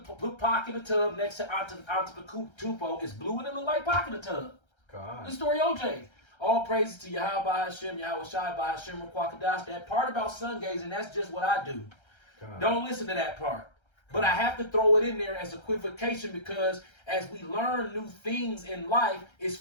Pac in the tub next to Antetokounmpo. It's blue and it look like Pac in the tub. Con. The story OJ. All praises to Yahweh Bahashim Yahweh Shai Bahashim Kwakadash. That part about sun gazing, that's just what I do. Con. Don't listen to that part. But I have to throw it in there as equivocation because as we learn new things in life, it's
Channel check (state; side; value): late; right; 1.3 ms